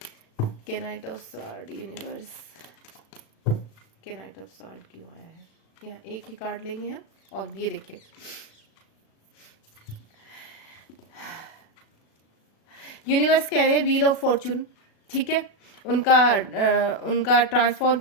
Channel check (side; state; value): right; late; 36 ms